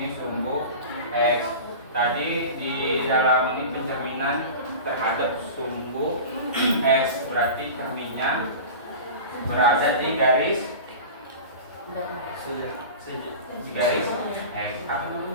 sumbu X. Tadi di dalam ini pencerminan terhadap sumbu X, berarti cerminnya berada di garis X. Apa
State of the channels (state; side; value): inverted; both; correlation -0.33